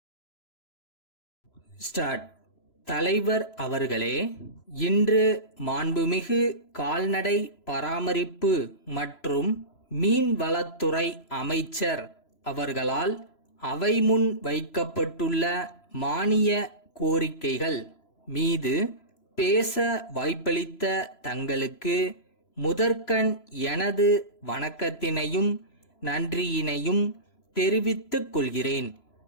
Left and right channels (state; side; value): late; right; 3.0 ms